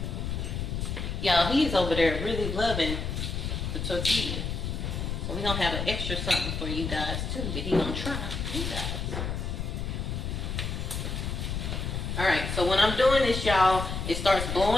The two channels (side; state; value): left; noise; rumble, 3 dB below the sound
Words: Y'all, he's over there really loving the tortilla. So we're gonna have an extra something for you guys too that he gonna try. You guys. Alright, so when I'm doing this, y'all, it starts